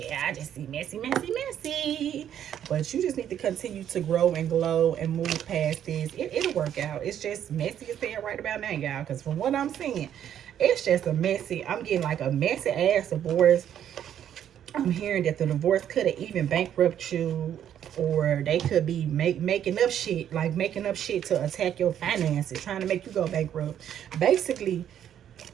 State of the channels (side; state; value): left; quieter; 10.0 dB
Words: I just see messy. But you just need to continue to grow and glow and move past this. It'll work out. It's just messy as hell right about now, y'all. Because from what I'm seeing, it's just a messy. I'm getting like a messy ass divorce. I'm hearing that the divorce could have even bankrupt you, or they could be making up shit to attack your finances, trying to make you go bankrupt. Basically,